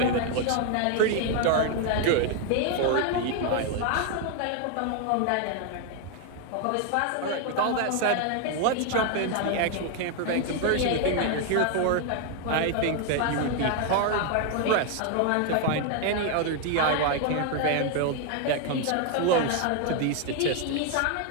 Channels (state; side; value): different; both; correlation 0.01